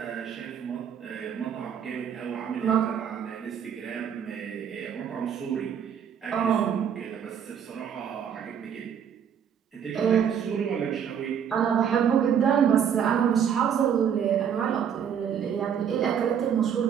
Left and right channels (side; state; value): left; quieter; 8.2 dB